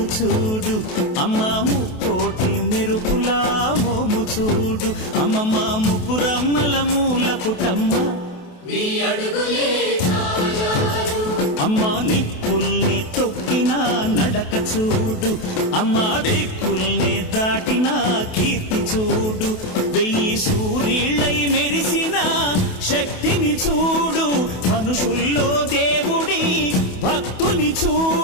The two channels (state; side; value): late; right; 28 ms